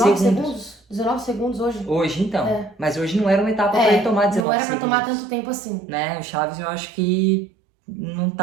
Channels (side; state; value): left; drops out; at 4.5 s